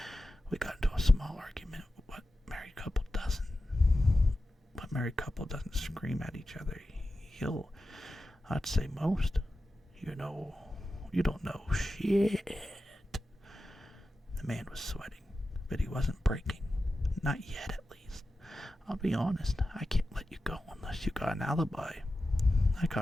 We got into a small argument. What married couple doesn't? What married couple doesn't scream at each other? I'd say most. You don't know shit. The man was sweating, but he wasn't breaking. Not yet, at least. I'll be honest, I can't let you go unless you got an alibi. I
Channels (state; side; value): normal; both; correlation 0.93